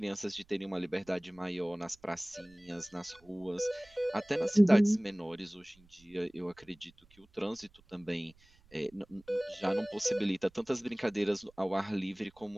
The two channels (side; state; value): right; noise; rumble, 29 dB below the sound